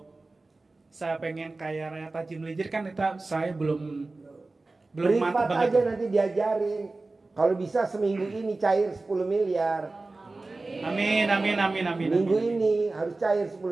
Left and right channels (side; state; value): left; quieter; 3.3 dB